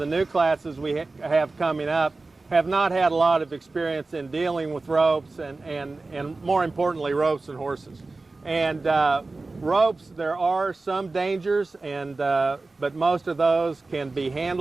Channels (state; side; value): quieter; left; 3.5 dB